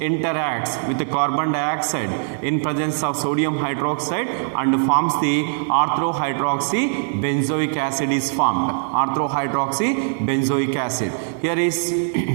with the carbon dioxide in presence of sodium hydroxide and forms the orthohydroxybenzoic acid is formed. Orthohydroxybenzoic acid. Here is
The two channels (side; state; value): left; silent; digital silence